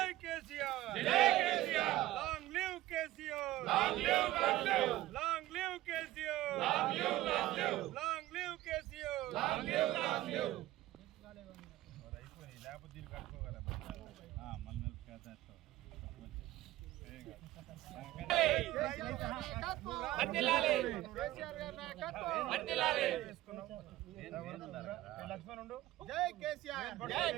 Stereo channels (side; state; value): left; quieter; 16.0 dB